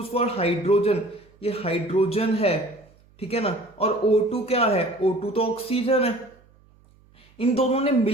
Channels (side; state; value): right; noise; hum, 30 dB below the sound